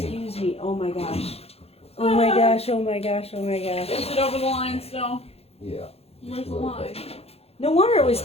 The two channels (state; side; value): late; right; 0.29 ms